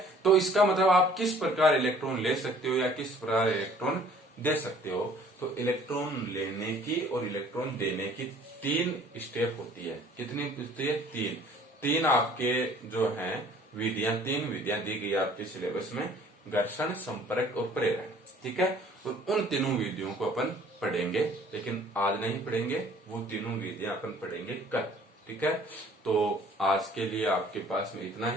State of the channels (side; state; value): both; normal; correlation 0.54